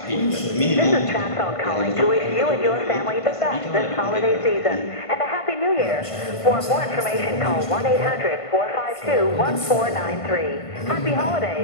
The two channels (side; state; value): right; late; 1.5 ms